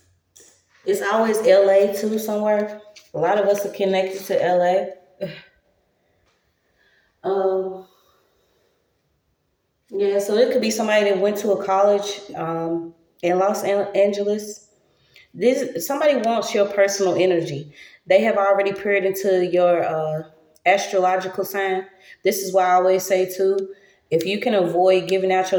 It's always LA too somewhere. A lot of us are connected to LA. Um, yeah, so it could be somebody that went to a college in Los Angeles. This somebody wants your personal energy. They have already peered into your astrological sign. This is why I always say too, if you can avoid giving out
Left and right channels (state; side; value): identical; both; correlation 1.00